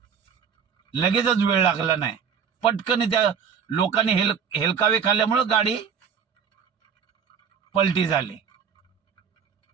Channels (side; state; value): left; quieter; 7.0 dB